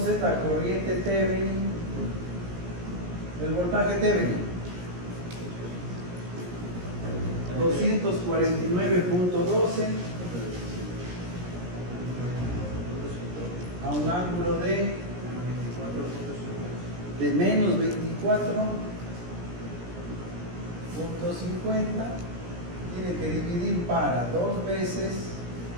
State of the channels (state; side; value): late; left; 17 ms